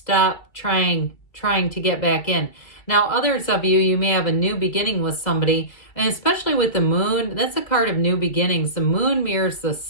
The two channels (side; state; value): right; late; 2.3 ms